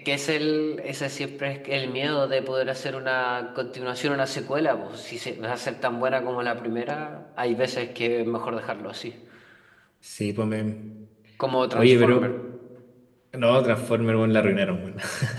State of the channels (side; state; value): both; identical; correlation 1.00